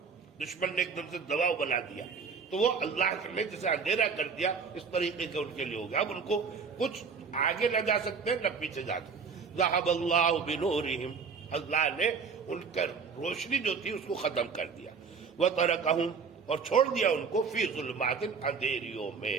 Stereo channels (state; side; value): quieter; left; 5.6 dB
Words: دشمن نے ایک دم سے دباؤ بنا دیا، تو وہ اللہ نے جسے اندھیرا کر دیا اس طریقے کا ان کے لیے ہو گیا، اب ان کو کچھ آگے نہ جا سکتے نہ پیچھے جا سکتے۔ ذهب اللہ بنورہم، اللہ نے ان کا روشنی جو تھی اس کو ختم کر دیا، وترکہم، اور چھوڑ دیا ان کو فی ظلمات، اندھیریوں میں،